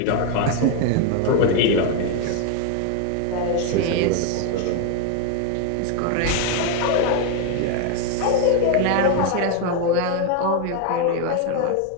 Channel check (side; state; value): both; different; correlation 0.01